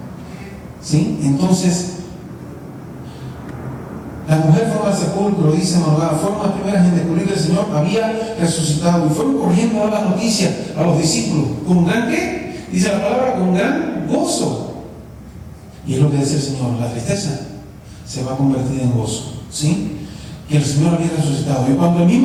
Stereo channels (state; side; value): identical; both; correlation 1.00